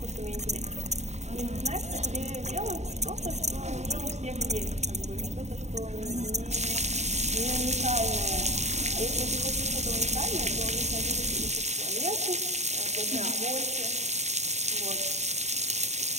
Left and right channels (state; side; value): late; left; 0.33 ms